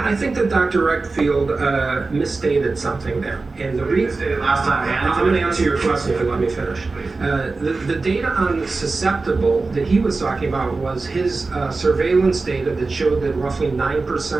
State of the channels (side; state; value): left; quieter; 3.8 dB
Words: I think that Dr. Reckfield misstated something there. And the reason Last time, I'm going to answer your question if you let me finish. The data on susceptible that he was talking about was his surveillance data that showed that roughly